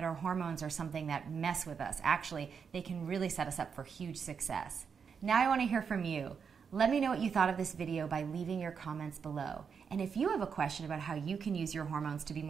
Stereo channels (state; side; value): quieter; left; 6.4 dB